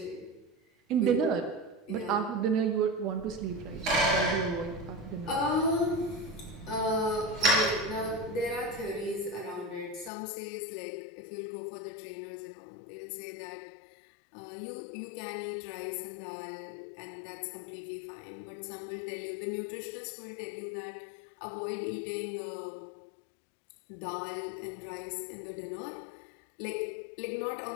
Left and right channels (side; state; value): right; drops out; at 10.1 s